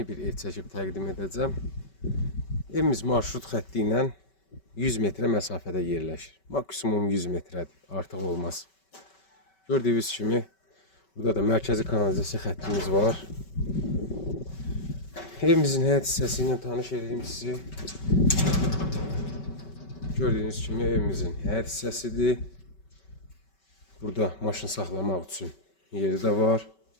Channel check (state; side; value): late; right; 5.2 ms